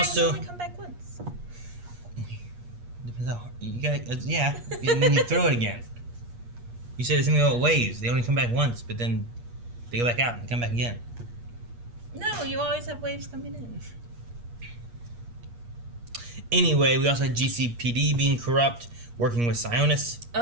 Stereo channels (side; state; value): left; late; 8.4 ms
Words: also only come back once. Depends how you gotta, yeah, and then you throw it again. You said the same thing about waves. They only come back once, but then they go back out and come back again. No, you always have waves coming in. Anyway, we also had GCPD being corrupt, working with Sionis.